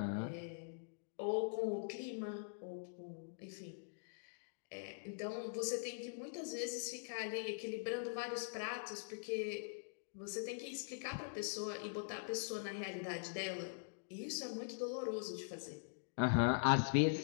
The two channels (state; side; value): silent; right; digital silence